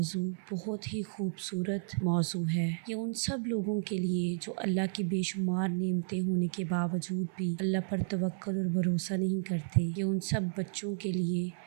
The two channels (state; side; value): silent; left; 56 dB below the other